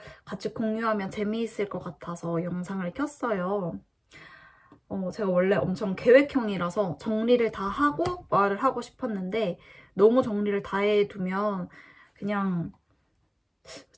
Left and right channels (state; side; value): identical; both; correlation 1.00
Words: 같이 공유하면 재미있을 것 같아서 영상을 켰어요. 제가 원래 엄청 계획형이라서 정리를 다 하고 말을 하고 싶었는데 너무 정리를 다 해두면 그냥